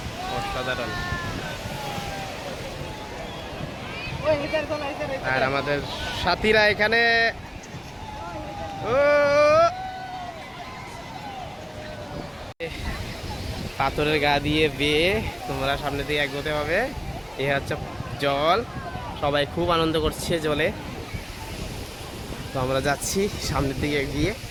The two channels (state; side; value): identical; both; correlation 1.00